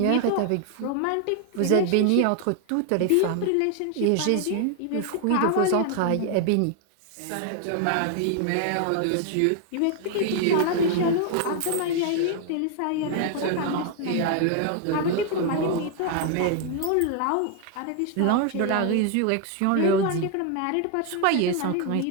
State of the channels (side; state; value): both; different; correlation 0.00